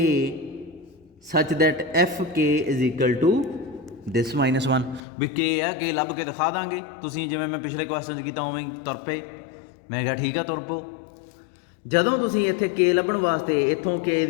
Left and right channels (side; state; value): right; drops out; at 5.0 s